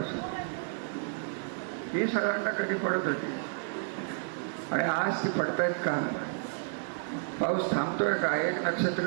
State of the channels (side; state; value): left; silent; digital silence